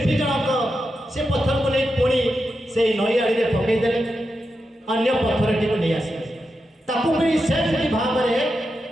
जनक से पत्थर को नहीं पुणी से नई आड़ी पकईदे अन्य पत्थरटी को नहीं आसिले ताकू भी सेमती भाव में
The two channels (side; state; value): both; normal; correlation 0.88